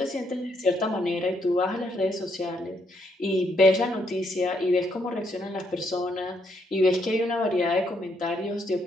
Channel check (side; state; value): both; normal; correlation 0.74